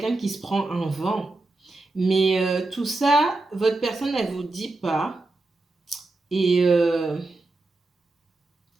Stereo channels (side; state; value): left; quieter; 3.1 dB